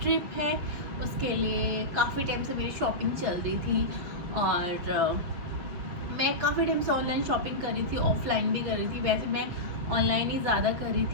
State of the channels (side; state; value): left; late; 7.0 ms